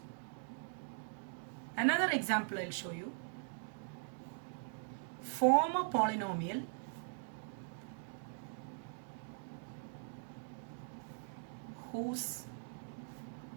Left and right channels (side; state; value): left; silent; digital silence